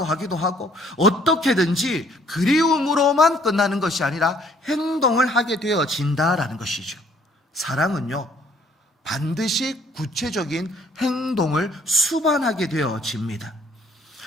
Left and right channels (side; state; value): both; normal; correlation 0.61